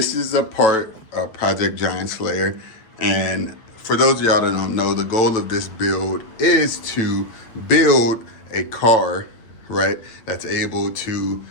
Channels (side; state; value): right; late; 9.0 ms